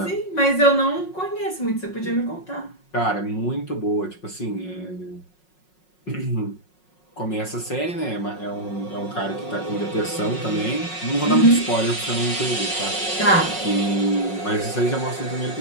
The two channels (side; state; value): right; late; 5.5 ms